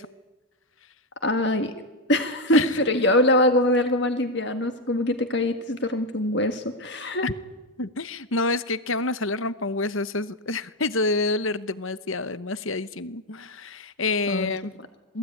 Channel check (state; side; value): normal; both; correlation 0.07